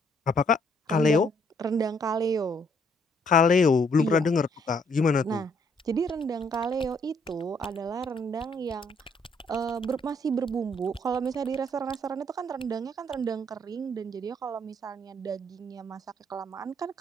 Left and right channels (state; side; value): normal; both; correlation 0.68